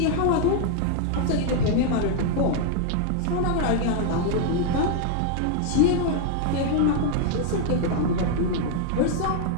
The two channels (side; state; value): both; different; correlation 0.00